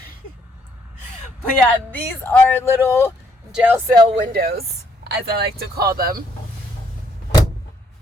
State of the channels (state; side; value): normal; both; correlation 0.69